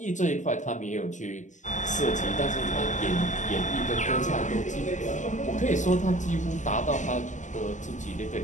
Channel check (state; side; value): late; right; 0.35 ms